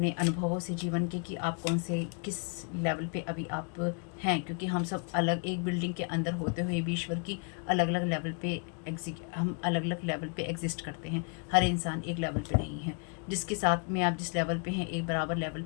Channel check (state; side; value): quieter; right; 39.3 dB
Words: अनुभवों से जीवन के कि आप कौन से किस लेवल पे अभी आप हैं, क्योंकि हम सब अलग एक बिल्डिंग के अंदर होते हुए भी ईश्वर की अलग अलग लेवल पे हम अलग अलग लेवल पे एग्जिस्ट करते हैं। हर इंसान एक लेवल पे नहीं है। जिसके साथ में आप जिस लेवल पे हैं, एक बराबर लेवल